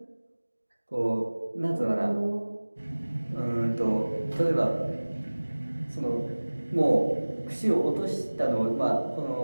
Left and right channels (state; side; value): inverted; both; correlation -1.00